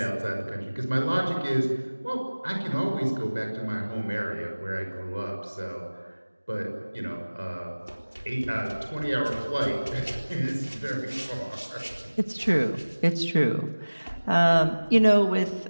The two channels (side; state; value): both; inverted; correlation -1.00